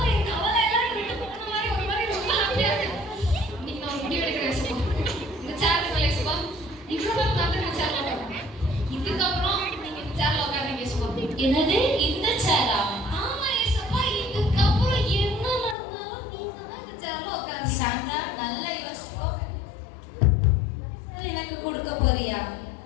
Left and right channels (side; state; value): right; drops out; at 15.8 s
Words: என் கவலை எல்லாம் விட்டு போன மாதிரி ஒரு மாதிரி ரொம்ப ஹாப்பியா இருக்கு. இன்னைக்கு நான் முடிவு எடுக்கிறேன் ஏசப்பா. இந்த சேர்ல ஏசப்பா, இவ்வளவு நாள் நான் சேர்ல உட்கார்றேன். இதுக்கப்புறம் நீங்க இந்த சேர்ல உட்காருங்க ஏசப்பா. என்னது இந்த சேரா? ஆமா ஏசப்பா, இதுக்கப்புறம் என்ன நடந்தாலும் நீங்க தான் இந்த சேர்ல உட்காருங்க. சாண்ட்ரா, நல்லா யோசிச்சுக்கோ. எனக்கு கொடுக்க போறியா?